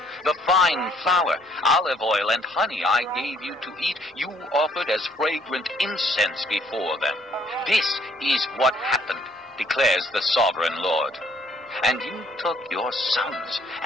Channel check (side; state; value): both; normal; correlation 0.63